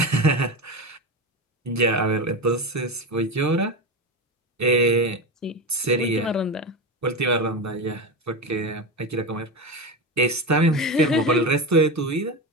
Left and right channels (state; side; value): normal; both; correlation 0.20